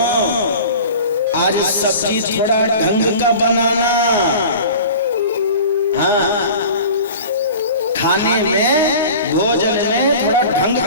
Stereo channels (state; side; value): inverted; both; correlation -0.39